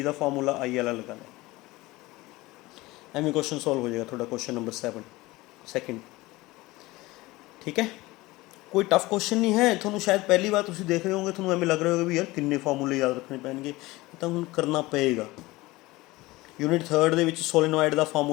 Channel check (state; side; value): quieter; right; 20.2 dB